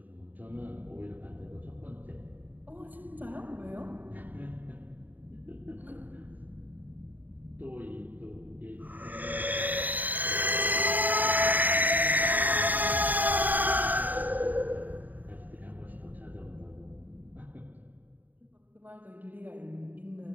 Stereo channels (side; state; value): left; late; 0.084 ms